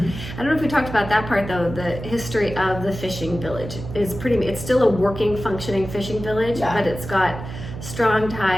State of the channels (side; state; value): right; noise; hum, 10 dB below the sound